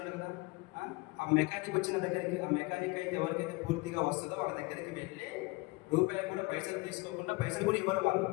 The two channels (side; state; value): right; quieter; 24.2 dB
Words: కదా. ఆ మెకానిక్ వచ్చిన దగ్గరికి, ఆ మెకానిక్ అయితే ఎవరికైతే పూర్తిగా వస్తుందో వాళ్ళ దగ్గరికి వెళ్ళి రూపాయలు కూడా పైసలు తీసుకోకుండా, పైసలు కూడా ఇవ్వరు, వాళ్ళు